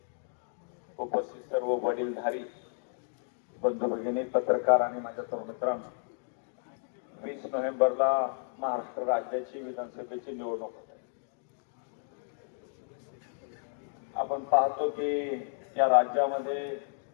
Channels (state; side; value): silent; right; digital silence